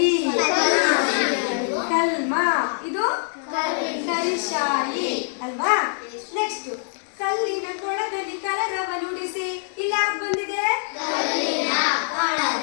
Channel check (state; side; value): silent; right; digital silence